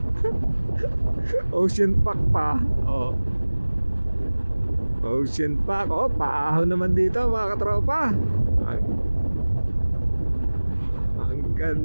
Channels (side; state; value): both; inverted; correlation -1.00